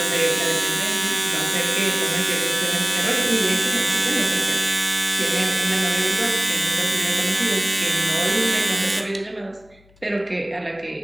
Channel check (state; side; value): noise; left; hum, 30 dB below the sound